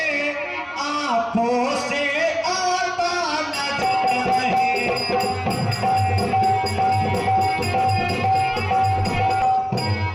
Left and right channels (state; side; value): identical; both; correlation 1.00